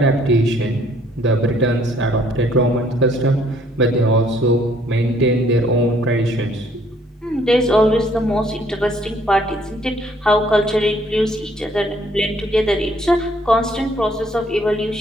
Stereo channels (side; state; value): both; normal; correlation 0.63